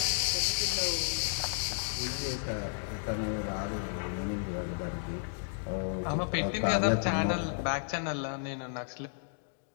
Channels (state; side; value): silent; right; digital silence